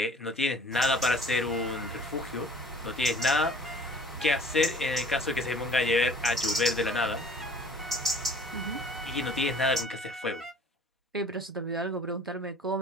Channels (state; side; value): normal; both; correlation 0.49